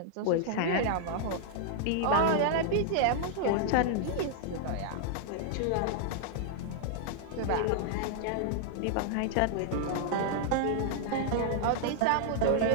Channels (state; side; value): different; both; correlation -0.01